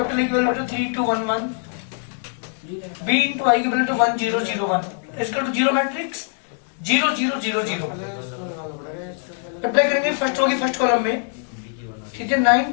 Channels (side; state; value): right; silent; 58 dB below the other